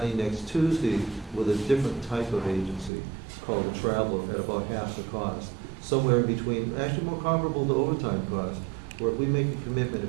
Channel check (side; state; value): left; drops out; at 2.9 s